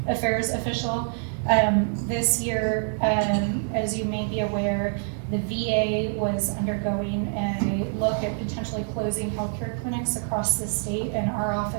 Affairs official. This year, as you may be aware, the VA was undergoing a look at potentially closing healthcare clinics across the state, and our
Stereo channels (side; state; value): left; silent; 61 dB below the other